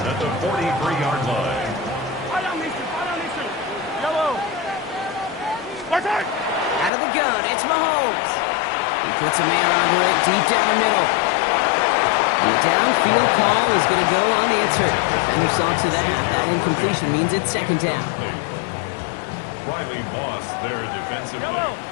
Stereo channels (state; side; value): drops out; right; at 6.9 s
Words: the 43-yard line. Out of the gun, it's Mahomes. He puts a man under it deep down the middle. And the downfield call is going to go unanswered. Defender saw to that. That incompletion means it's 2nd down. Riley Moss there defensively. To